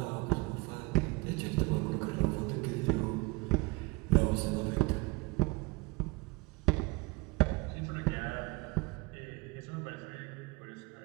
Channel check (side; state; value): left; quieter; 23.5 dB